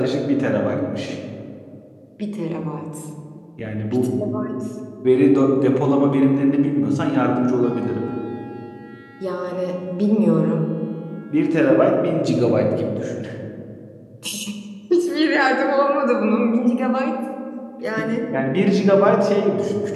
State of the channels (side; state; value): both; identical; correlation 1.00